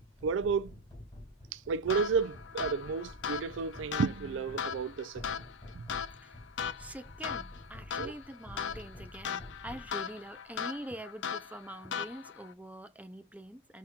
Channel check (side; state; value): both; normal; correlation 0.06